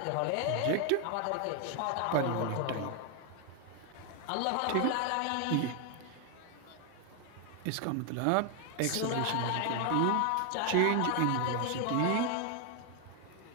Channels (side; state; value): both; different; correlation 0.00